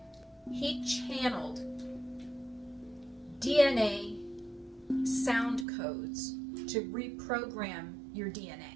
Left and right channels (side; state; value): left; drops out; at 5.7 s